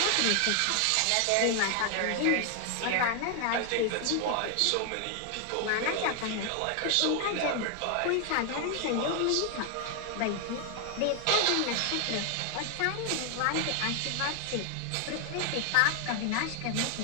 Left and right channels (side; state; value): both; different; correlation 0.00